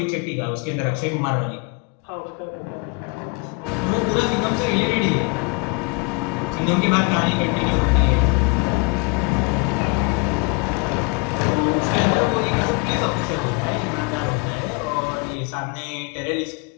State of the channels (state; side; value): quieter; right; 28.7 dB